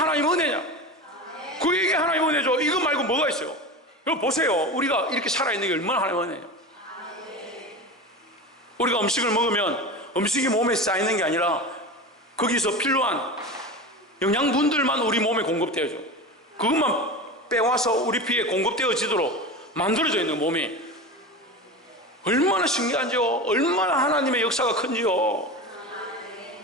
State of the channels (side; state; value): both; normal; correlation 0.27